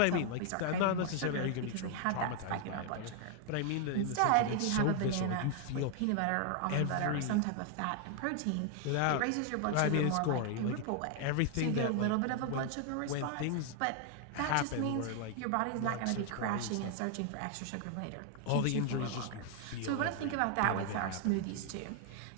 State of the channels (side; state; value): both; different; correlation 0.00